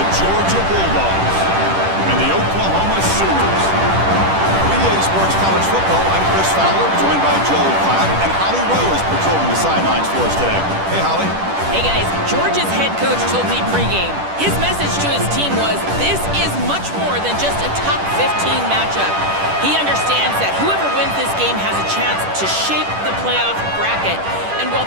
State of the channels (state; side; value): late; left; 10 ms